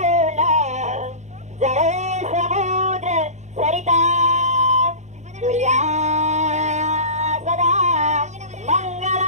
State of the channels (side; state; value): left; late; 0.34 ms